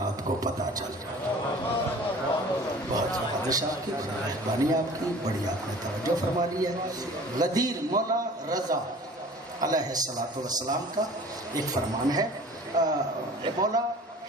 کو پتہ چل جائے۔ بہت زبردست آپ کی مہربانی، آپ کی بڑی آپ نے توجہ فرما لی ہے۔ غدیر مولا رضا علیہ السلام کا ایک فرمان ہے، مولا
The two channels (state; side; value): normal; both; correlation 0.45